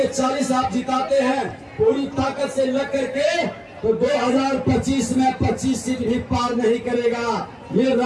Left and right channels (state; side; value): identical; both; correlation 1.00